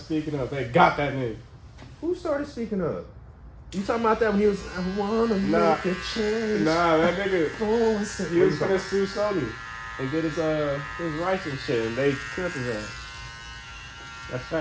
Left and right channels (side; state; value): both; identical; correlation 1.00